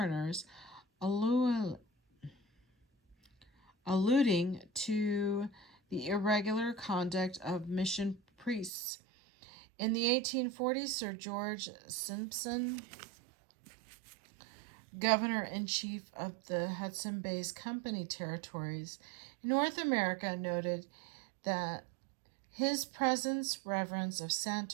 alluding to the irregular conduct of mission priests. In the 1840s, Sir George Simpson, Governor-in-Chief of the Hudson Bay Company territories in North America, noted that his presence reverence of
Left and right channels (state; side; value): drops out; left; at 8.7 s